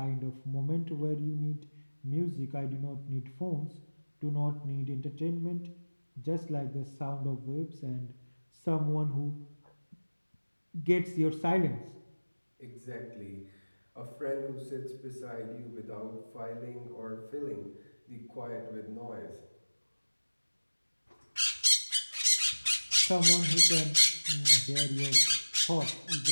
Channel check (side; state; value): both; inverted; correlation -1.00